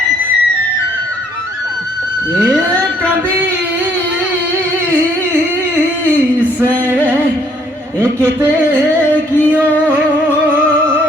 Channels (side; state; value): both; normal; correlation 0.65